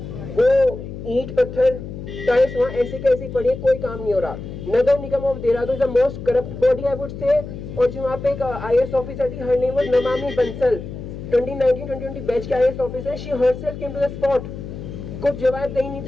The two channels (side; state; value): left; noise; hum, 10 dB below the sound